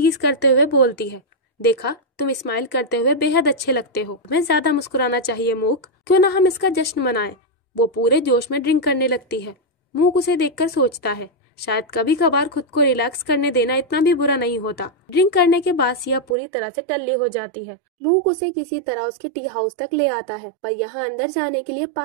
करते हुए बोलती है, देखा तुम स्माइल करते हुए बेहद अच्छे लगते हो, तुम्हें ज्यादा मुस्कुराना चाहिए मूक, क्यों ना हम इसका जश्न मनाएं। वो पूरे जोश में ड्रिंक करने लगती है। मूक उसे देखकर सोचता है, शायद कभी कभार खुद को रिलैक्स करने देना इतना भी बुरा नहीं होता। ड्रिंक करने के बाद सिया पूरी तरह से टल्ली हो जाती है। मूक उसे किसी तरह उसके टी हाउस तक ले आता है, पर यहाँ अंदर जाने के लिए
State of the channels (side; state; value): left; drops out; at 16.4 s